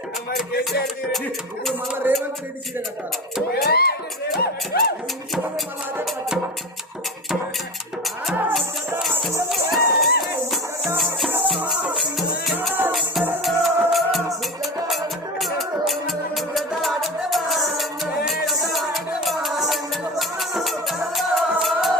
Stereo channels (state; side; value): normal; both; correlation 0.27